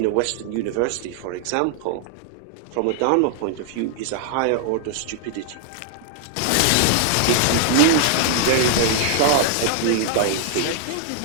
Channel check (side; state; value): both; different; correlation 0.00